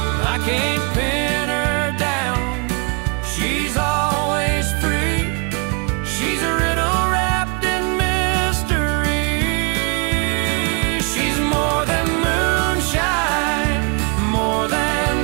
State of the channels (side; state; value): left; quieter; 34.9 dB